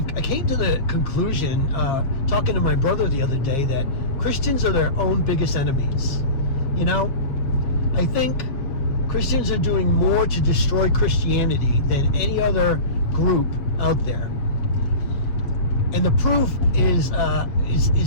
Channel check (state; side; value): late; right; 7.4 ms